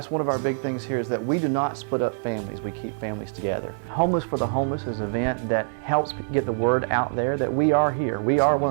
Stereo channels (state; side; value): silent; left; digital silence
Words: one of our big things here, is that we do not split up families, we keep families together. Homeless for the Homeless is an event that helps get the word out there that we are here. We are one